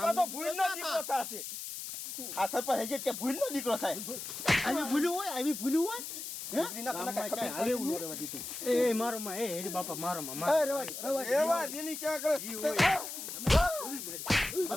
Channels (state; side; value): noise; left; hiss, 7 dB below the sound